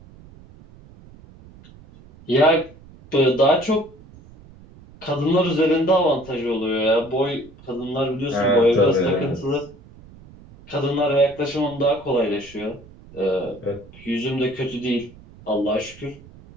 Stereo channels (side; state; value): right; noise; rumble, 22 dB below the sound